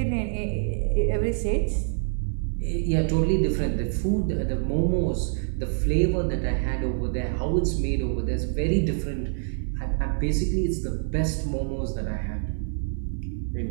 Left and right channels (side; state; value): left; silent; 61 dB below the other